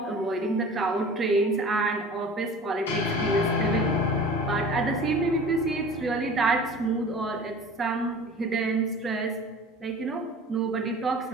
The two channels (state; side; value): normal; both; correlation 0.41